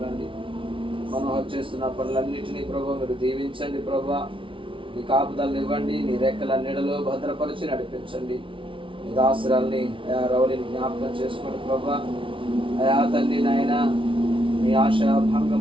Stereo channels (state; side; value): late; left; 0.25 ms